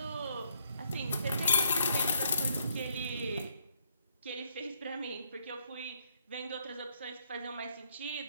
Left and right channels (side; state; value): both; inverted; correlation -0.71